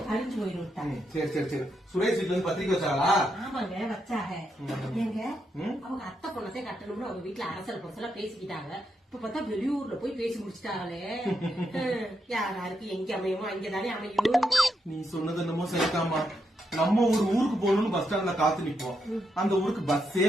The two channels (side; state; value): both; normal; correlation 0.82